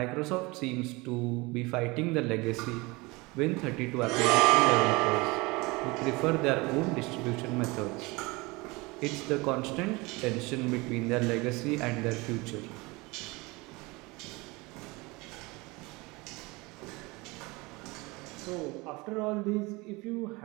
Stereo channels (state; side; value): quieter; left; 24.3 dB